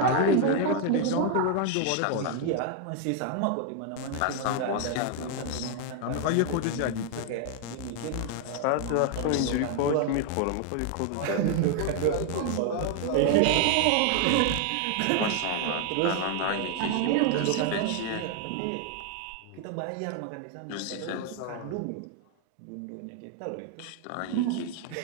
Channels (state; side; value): different; both; correlation 0.00